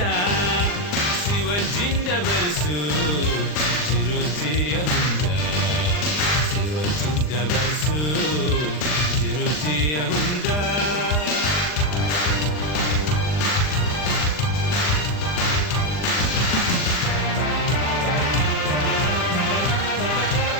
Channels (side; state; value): right; late; 40 ms